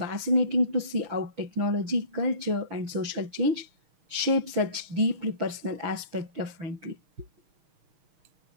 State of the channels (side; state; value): left; late; 6.4 ms